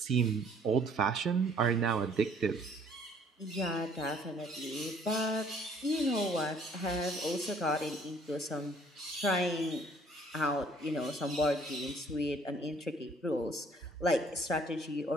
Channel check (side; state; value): both; normal; correlation 0.59